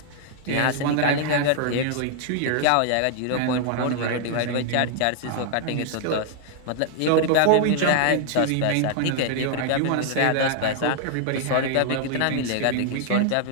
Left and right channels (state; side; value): different; both; correlation 0.00